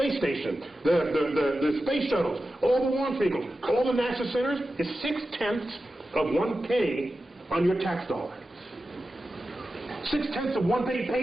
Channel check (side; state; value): both; normal; correlation 0.92